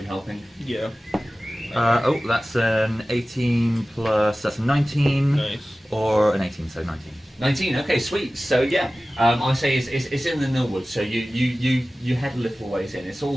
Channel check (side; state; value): both; normal; correlation 0.96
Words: helping. Yeah. Oh, that's an 18 plus, that's a 19. Nice. Or an 18, so 19. 19. Okay, sweet. So yeah, I say it's in the Millwood. So you head a little ways in. It's